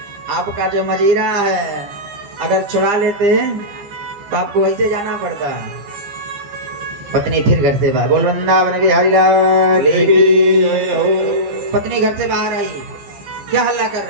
आपका जो मजीरा है, अगर छुड़ा लेते तो आपको वैसे जाना पड़ता। पत्नी फिर घर से बाहर, बोल वृंदावन बिहारी लाल की जय हो। पत्नी घर से बाहर आई, क्या हल्ला कर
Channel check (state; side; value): late; left; 15 ms